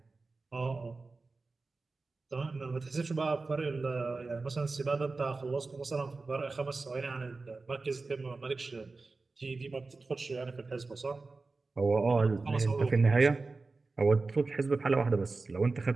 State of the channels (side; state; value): left; quieter; 3.8 dB